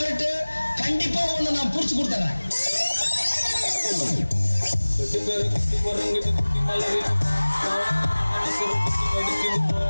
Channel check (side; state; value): both; inverted; correlation -1.00